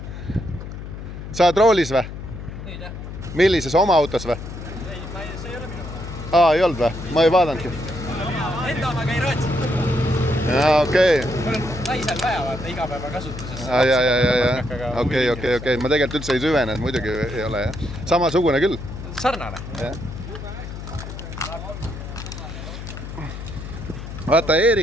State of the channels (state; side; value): noise; left; hum, 10 dB below the sound